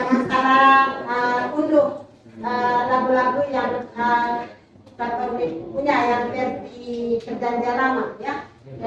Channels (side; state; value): both; identical; correlation 1.00